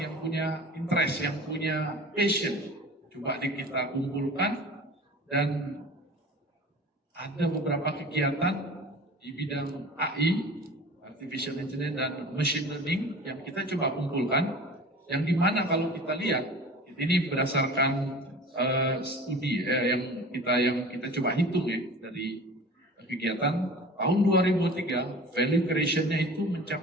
yang punya interest, yang punya passion, coba kita kumpulkan dan ada beberapa kegiatan di bidang AI, Artificial Intelligence dan Machine Learning yang kita coba kumpulkan, yang dimana kalau kita lihat ini berdasarkan studi yang kita coba hitung ya dari kegiatan tahun 2003 value creation-nya itu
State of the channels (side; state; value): both; normal; correlation 0.40